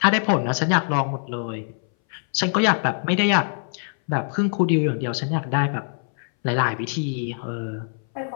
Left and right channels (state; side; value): silent; right; 61 dB below the other